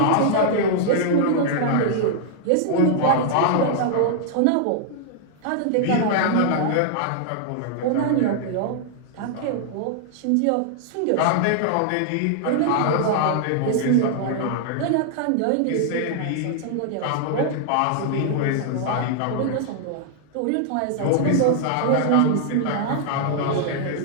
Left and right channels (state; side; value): different; both; correlation -0.01